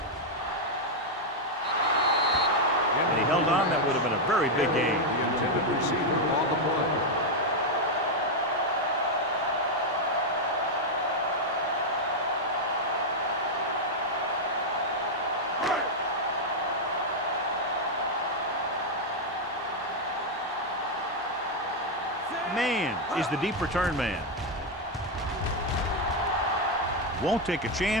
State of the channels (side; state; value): both; normal; correlation 0.01